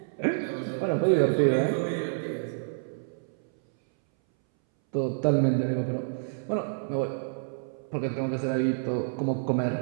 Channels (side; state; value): left; silent; 59 dB below the other